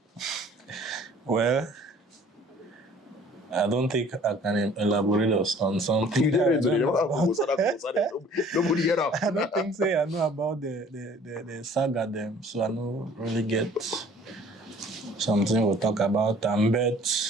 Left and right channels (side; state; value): both; normal; correlation 0.53